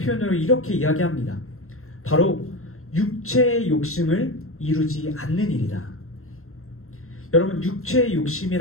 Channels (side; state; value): right; late; 0.62 ms